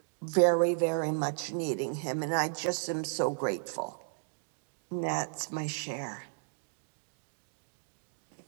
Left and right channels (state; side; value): silent; left; digital silence